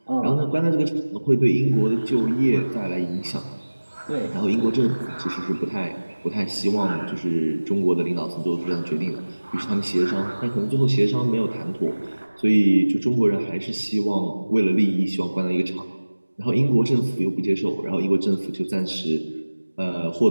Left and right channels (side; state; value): both; inverted; correlation -1.00